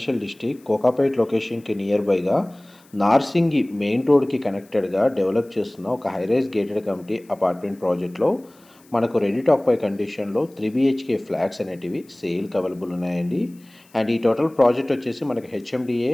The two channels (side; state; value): left; noise; hiss, 30 dB below the sound